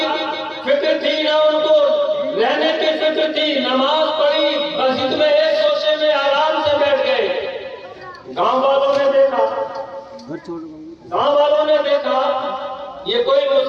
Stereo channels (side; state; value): both; identical; correlation 1.00